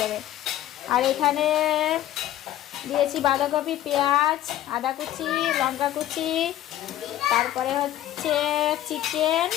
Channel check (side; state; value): right; quieter; 12.8 dB